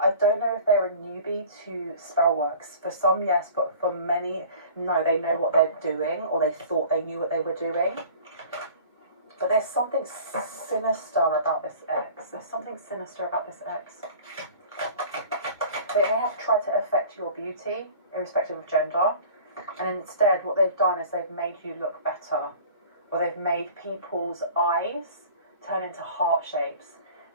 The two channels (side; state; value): both; inverted; correlation -0.43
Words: don't know if they're a newbie to spell works. For some, yes, but for many, no, they know what they're doing, or they thought they knew what they were doing. But there's something sinister about this ex. There's something sinister about this ex. They may have tried to affect your beauty, irrespective of gender, and instead what they've done is they've made you look better, or they've made people's eyes turn into heart shapes,